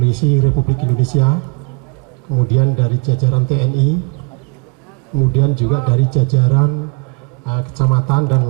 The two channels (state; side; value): quieter; left; 31.4 dB